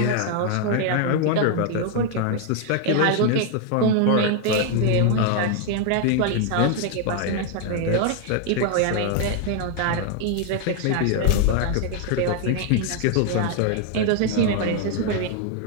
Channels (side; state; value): both; different; correlation 0.00